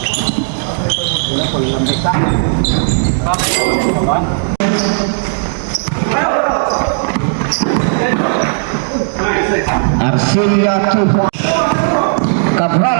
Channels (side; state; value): left; silent; digital silence